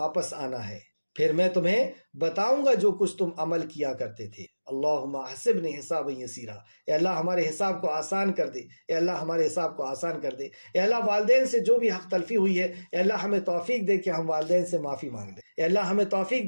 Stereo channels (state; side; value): inverted; both; correlation -1.00